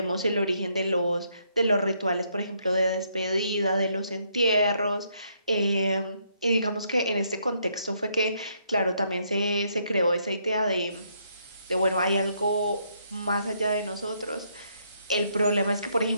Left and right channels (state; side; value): inverted; both; correlation -0.73